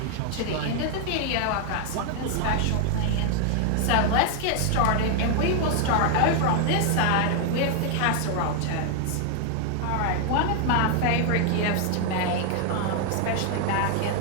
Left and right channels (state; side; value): different; both; correlation 0.00